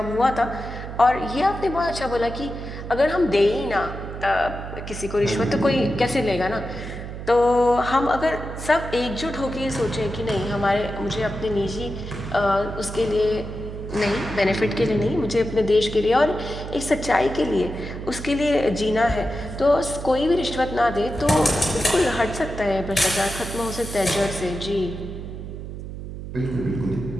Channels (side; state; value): right; noise; hum, 9 dB below the sound